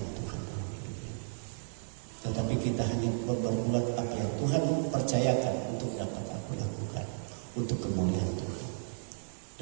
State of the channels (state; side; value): silent; left; digital silence